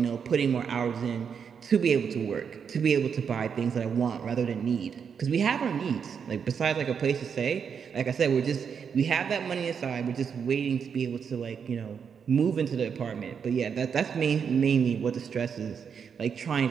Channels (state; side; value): quieter; left; 6.9 dB